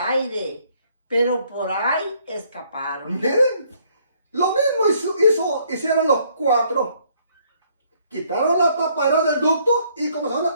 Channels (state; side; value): inverted; both; correlation -0.66